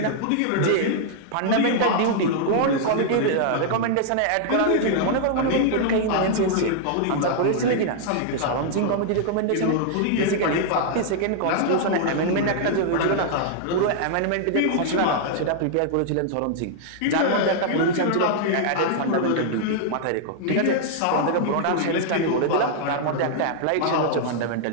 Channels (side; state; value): both; different; correlation -0.01